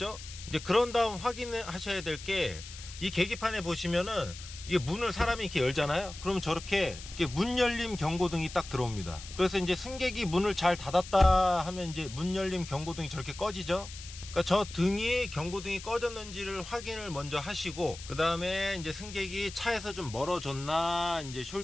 이제 그런 다음 확인하셔야 될 게, 이 계기판에 보시면은 이게 문을 사람이 이렇게 열잖아요. 그러면 저렇게 문 열림 경고등이 딱 들어옵니다. 그래서 이제 승객이 문을 잘 닫았다 하면 이제 문 열림 경고등이 저렇게 꺼지죠. 그러니까 저 등이 경고등이 꺼졌는지를 확인을 먼저 하시고, 그 다음에 이제 승객이 차에서 좀 멀어졌나 이제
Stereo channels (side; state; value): left; noise; hiss, 14 dB below the sound